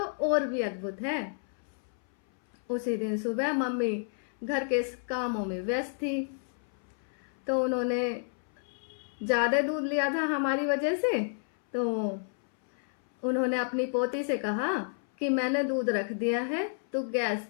और भी अद्भुत है। उसी दिन सुबह मम्मी घर के कामों में व्यस्त थी, तो उन्होंने ज़्यादा दूध लिया था हमारी वजह से। तो उन्होंने अपनी पोती से कहा कि मैंने दूध रख दिया है, तो गैस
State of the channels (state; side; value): silent; right; 57 dB below the other